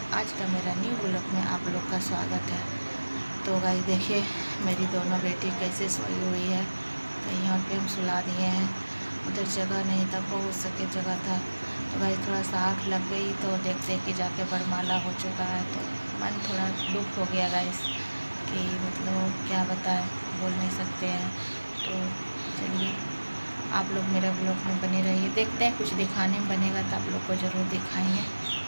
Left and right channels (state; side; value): inverted; both; correlation -1.00